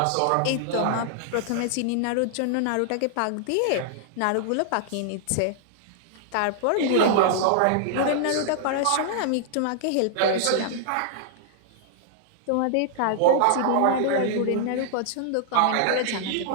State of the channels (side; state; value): both; different; correlation -0.01